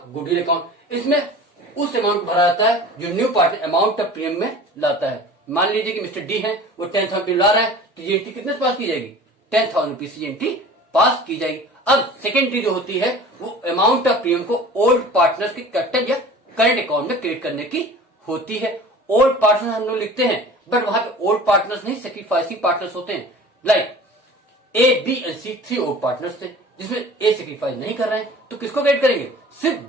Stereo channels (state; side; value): normal; both; correlation 0.42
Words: goodwill account. इसमें उस अमाउंट भरा जाता है जो new partner amount of premium में लाता है। मान लीजिए कि मिस्टर डी है, वो 10,000 रुपये ला रहा है, तो ये एंट्री कितने पास की जाएगी, 10,000 रुपीज की एंट्री पास की जाएगी। अब सेकेंड एंट्री जो होती है वो अमाउंट ऑफ प्रीमियम को ओल्ड पार्टनर्स के कैपिटल या करंट अकाउंट में क्रेडिट करने की होती है। ओल्ड पार्टनर्स हम लोग लिखते हैं, बट वहां पे ओल्ड पार्टनर्स नहीं, सेक्रीफाइसिंग पार्टनर्स होते हैं। Like A, B and C 3 old partners थे, जिसमें ए सेक्रीफाइस नहीं कर रहे हैं, तो किसको क्रेडिट करेंगे, सिर्फ